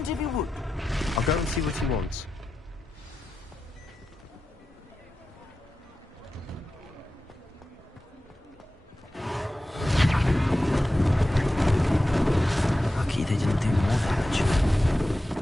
if you would. I'll go and see what he wants. Lucky they didn't do more damage.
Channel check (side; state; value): both; normal; correlation 0.93